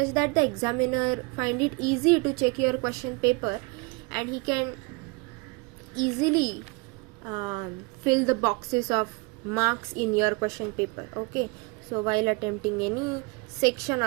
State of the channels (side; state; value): left; quieter; 28.6 dB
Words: that the examiner find it easy to check your question paper and he can easily fill the boxes of marks in your question paper. Okay, so while attempting any section